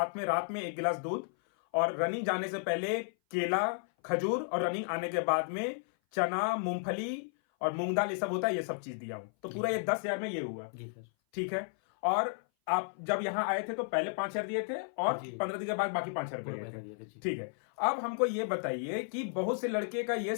में रात में 1 गिलास दूध, और रनिंग जाने से पहले केला, खजूर, और रनिंग आने के बाद में चना, मूंगफली और मूंग दाल, ये सब होता है, ये सब चीज दिया हूं। तो पूरा ये 10,000 में ये हुआ। जी सर। ठीक है। और आप जब यहाँ आए थे तो पहले 5,000 दिए थे और 15 दिन के बाद बाकी 5,000 रुपए दिए थे। ठीक है। अब हमको ये बताइए कि बहुत से लड़के का ये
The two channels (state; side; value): silent; right; 56 dB below the other